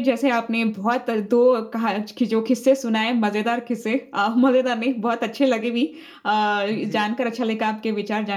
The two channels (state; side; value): identical; both; correlation 1.00